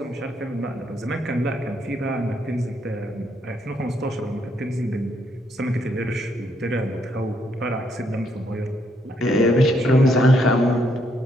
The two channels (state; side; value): normal; both; correlation 0.73